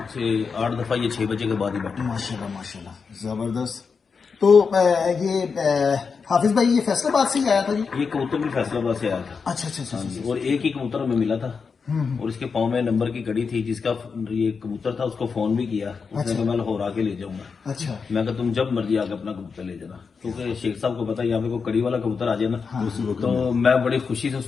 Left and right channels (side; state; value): right; quieter; 5.4 dB